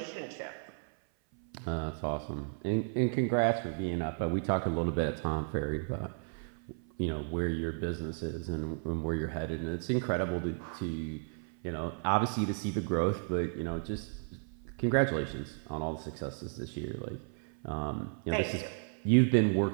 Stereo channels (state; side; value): silent; left; 55 dB below the other